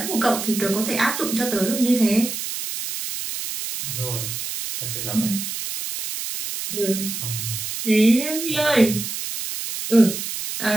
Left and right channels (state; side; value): noise; right; hiss, 5 dB below the sound